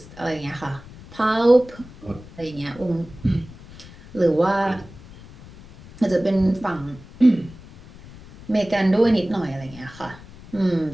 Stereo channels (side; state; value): left; noise; rumble, 19 dB below the sound